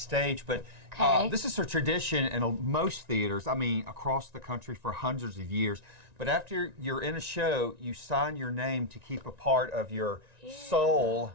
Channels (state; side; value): late; left; 1.9 ms